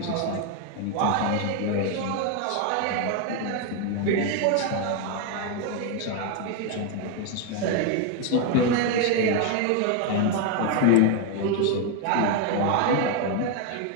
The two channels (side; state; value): both; different; correlation 0.01